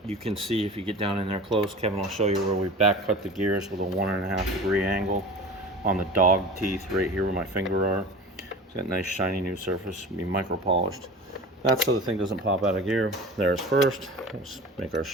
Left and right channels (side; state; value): both; normal; correlation 0.36